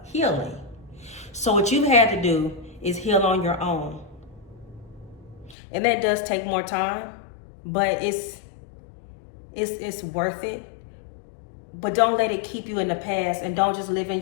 healing. So what you've had to do is heal on your own. And that does take more time, but it's worth it. But don't let it keep you in the past, and don't just live in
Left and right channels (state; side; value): drops out; right; at 5.6 s